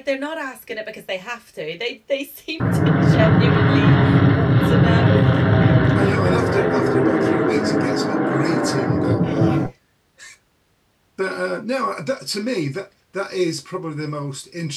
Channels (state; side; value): identical; both; correlation 1.00